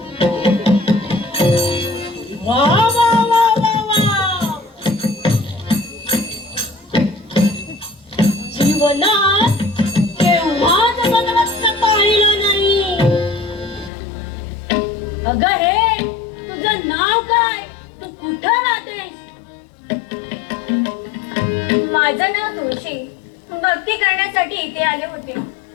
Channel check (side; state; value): right; drops out; at 13.9 s